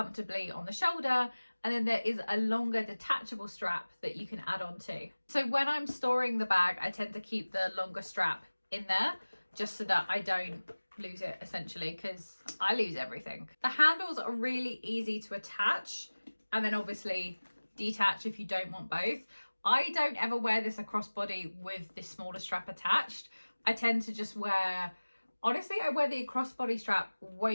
on the shoulder, and then there is a longer detachable strap that you can add on to. So when I'm storing the bag, I tend to keep the longer strap in there, just so that I don't lose it, essentially, because I lose everything. The handles are really easy to attach and then obviously detach if you don't want both. I don't ever wear this across body with this smaller strap attached. I tend to just wear, honestly, I wear the crossbody strap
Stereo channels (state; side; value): inverted; both; correlation -1.00